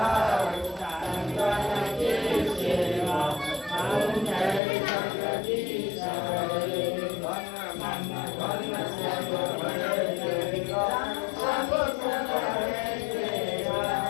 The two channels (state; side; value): drops out; right; at 4.6 s